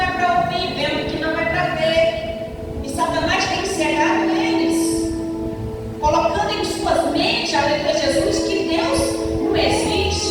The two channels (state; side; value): identical; both; correlation 1.00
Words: é para ouvir, vendo que não é para ver. E Satanás tem cegado eles, colocando em suas mentes, aleluia Jesus, que Deus não